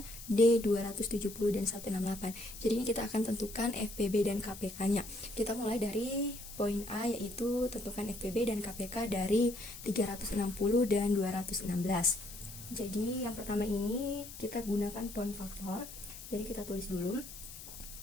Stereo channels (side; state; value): left; noise; hiss, 13 dB below the sound